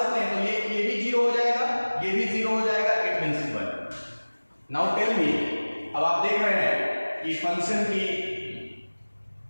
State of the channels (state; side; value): inverted; both; correlation -1.00